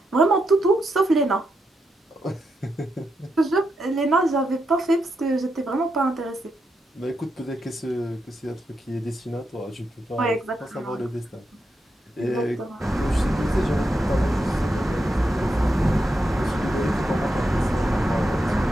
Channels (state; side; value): normal; both; correlation 0.84